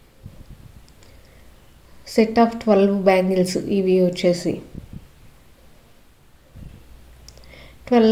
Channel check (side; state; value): both; identical; correlation 1.00